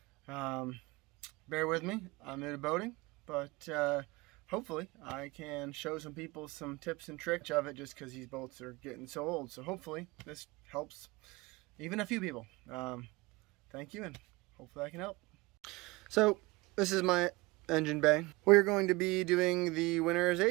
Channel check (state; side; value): quieter; left; 23.0 dB